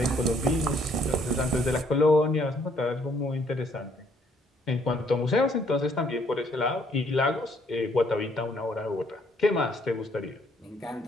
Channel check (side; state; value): both; normal; correlation 0.66